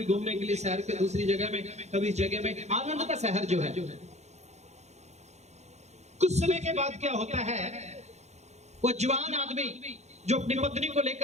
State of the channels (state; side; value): late; left; 0.32 ms